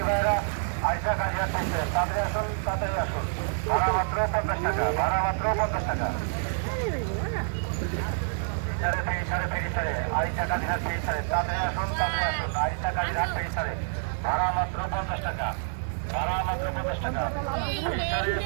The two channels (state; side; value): silent; left; 60 dB below the other